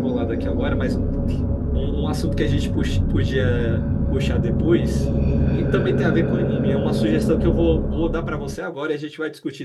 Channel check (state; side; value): identical; both; correlation 1.00